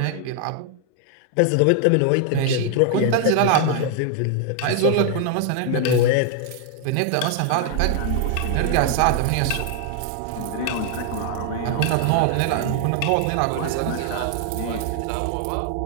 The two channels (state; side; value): different; both; correlation 0.00